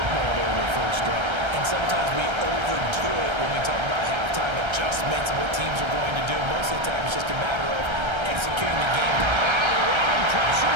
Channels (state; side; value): late; left; 1.3 ms